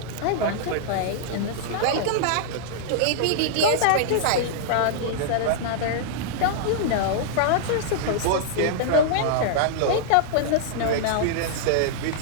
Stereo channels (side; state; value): both; different; correlation -0.01